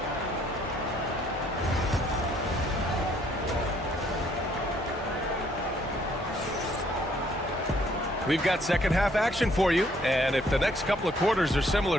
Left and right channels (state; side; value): normal; both; correlation 0.65